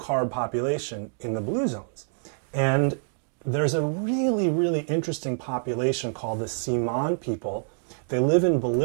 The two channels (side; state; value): left; silent; digital silence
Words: population in the blue zones. And there's a really, really interesting population called the Siman people. They live in